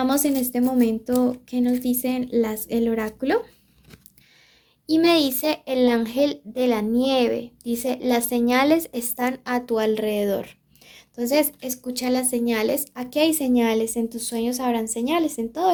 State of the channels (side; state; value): both; identical; correlation 1.00